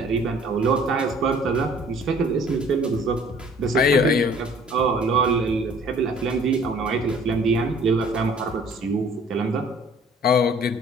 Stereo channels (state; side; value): normal; both; correlation 0.54